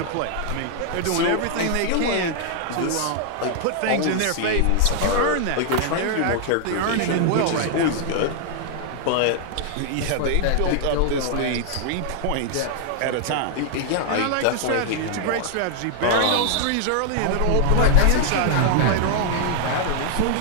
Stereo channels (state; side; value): different; both; correlation 0.00